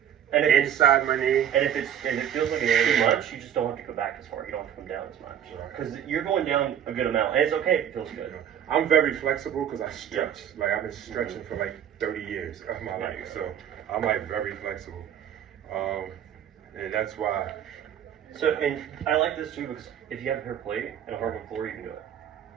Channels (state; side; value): quieter; left; 9.6 dB